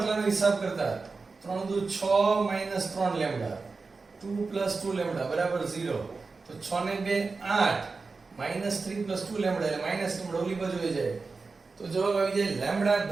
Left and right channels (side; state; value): left; quieter; 4.2 dB